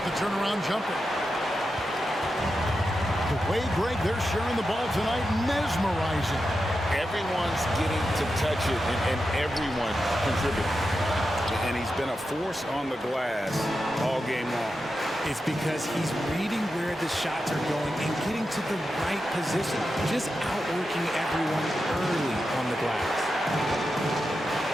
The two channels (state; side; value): normal; both; correlation 0.89